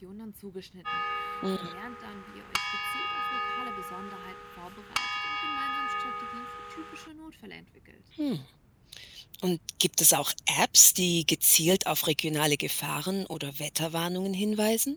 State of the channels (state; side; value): identical; both; correlation 1.00